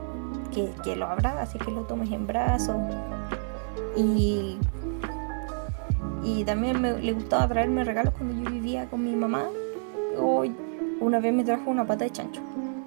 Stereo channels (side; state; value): left; silent; digital silence